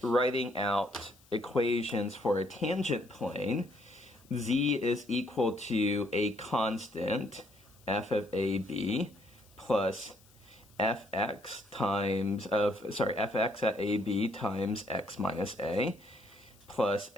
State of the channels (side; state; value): left; noise; hiss, 28 dB below the sound